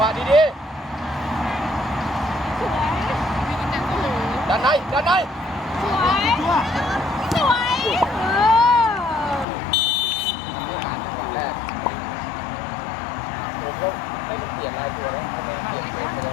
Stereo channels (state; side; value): drops out; right; at 9.5 s